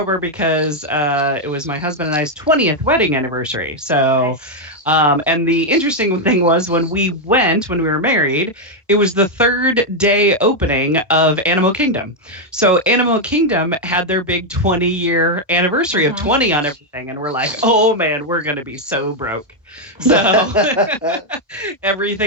because it was my husband and I's 20th wedding anniversary. So and the interesting thing was, when we were married, it was the third day opening of Animal Kingdom. So Animal Kingdom had their big 20-year anniversary of 20 on everything. And we're like, oh man, we're going to be so broke. So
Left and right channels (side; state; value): both; normal; correlation 0.01